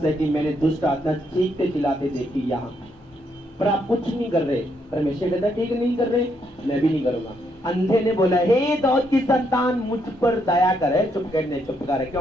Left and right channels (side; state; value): both; normal; correlation 0.75